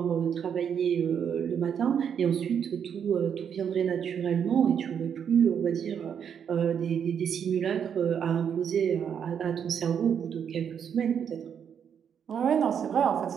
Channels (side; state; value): left; quieter; 7.9 dB